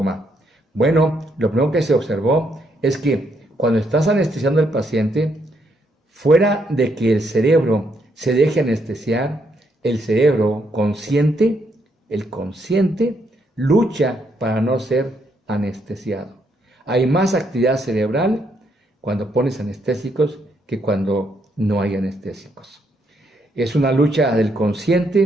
Bueno, lo primero que se observó es que cuando estás anestesiando al paciente, fuera de que el cerebro se deje anestesiar, el cerebro consciente, el consciente, lucha para no ser anestesiado. Hay más actividad cerebral cuando pones anestésicos que cuando no hay anestésicos. Es una lucha del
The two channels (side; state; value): both; normal; correlation 0.75